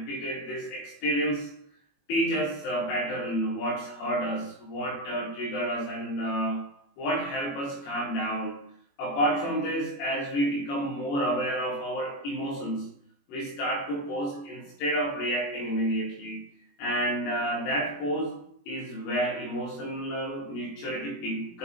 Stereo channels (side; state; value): right; late; 21 ms